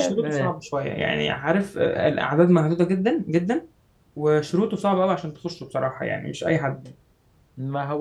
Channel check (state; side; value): identical; both; correlation 1.00